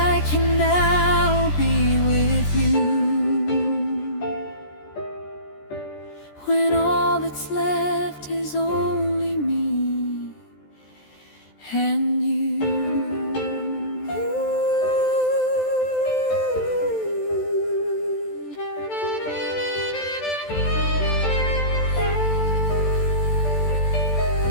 can now be with you, when all that's left is only me and you.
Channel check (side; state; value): right; late; 14 ms